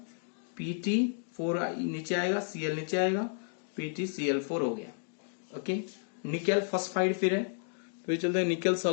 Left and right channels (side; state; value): right; silent; digital silence